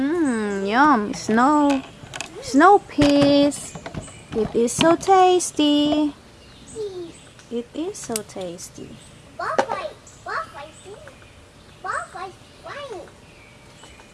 snow peas. It is so tasty. It is so tasty.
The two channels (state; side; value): identical; both; correlation 1.00